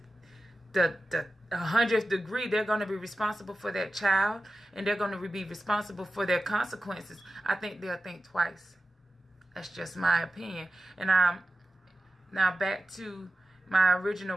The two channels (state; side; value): normal; both; correlation 0.93